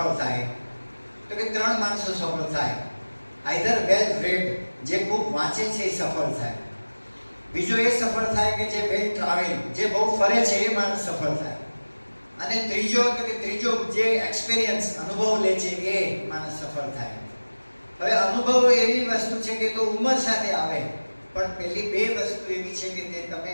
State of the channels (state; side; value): inverted; both; correlation -1.00